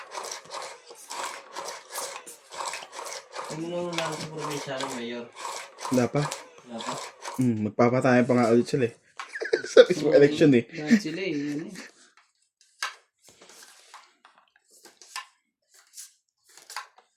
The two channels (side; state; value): both; identical; correlation 1.00